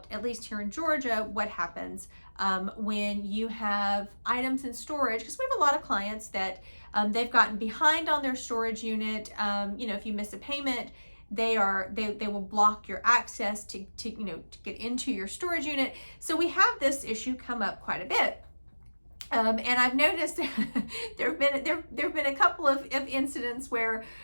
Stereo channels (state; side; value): inverted; both; correlation -1.00